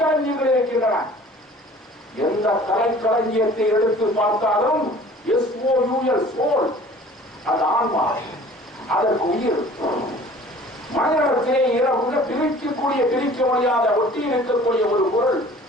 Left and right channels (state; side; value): normal; both; correlation 0.48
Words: இருக்கின்றன. எந்த கலைக்களஞ்சியத்தை எடுத்து பார்த்தாலும் SOUL சோல், அது ஆன்மா, அதற்கு உயிர். மனிதத்திலே பிரிக்கக்கூடிய, பிரிக்க முடியாத ஒட்டி இருக்கக்கூடிய ஒரு பொருள்